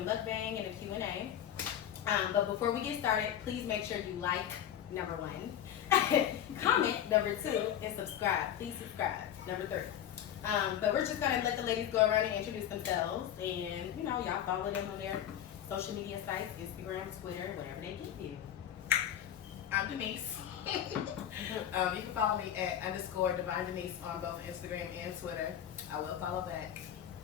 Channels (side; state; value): right; quieter; 10.4 dB